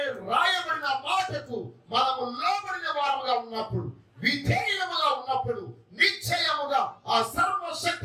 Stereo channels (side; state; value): both; identical; correlation 1.00